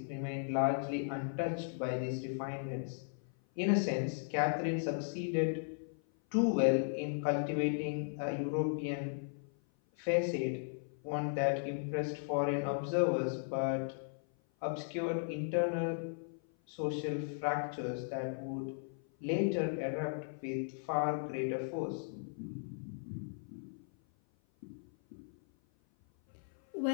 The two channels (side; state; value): right; silent; 53 dB below the other